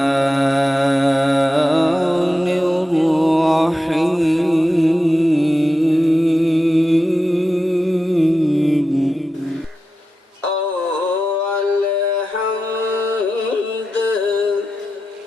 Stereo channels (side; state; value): both; normal; correlation 0.91